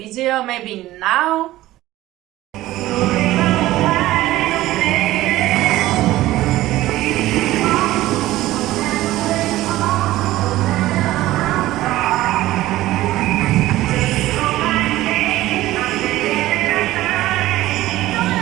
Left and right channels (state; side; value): quieter; left; 16.1 dB